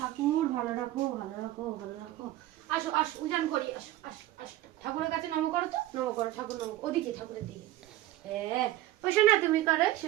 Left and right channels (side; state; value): left; quieter; 15.4 dB